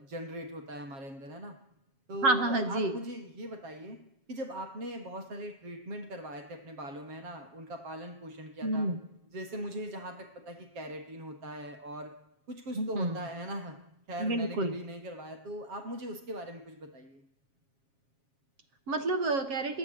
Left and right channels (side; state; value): left; late; 7.4 ms